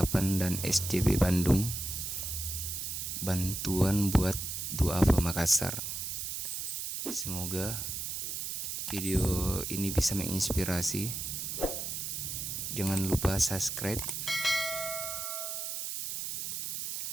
dan SJB Bandung, bantuan buat duafa Makassar. Semoga video ini bisa menginspirasi. Jangan lupa subscribe,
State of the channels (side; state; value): right; noise; hiss, 4 dB below the sound